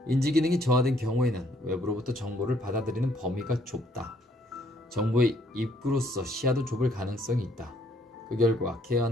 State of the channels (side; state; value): both; normal; correlation 0.67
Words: 인지기능이 저하된 경우에는 외부로부터 정보를 받아들이는 범위가 좁다. 정보의 입구로서 시야도 좁을 가능성이 있다. 그 결과